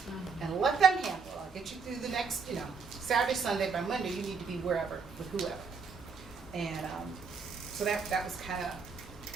and let them handle it. I'll get you through the next, you know, Saturday, Sunday. By Monday, you need to be wherever with whoever. And so that was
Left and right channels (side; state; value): left; quieter; 5.1 dB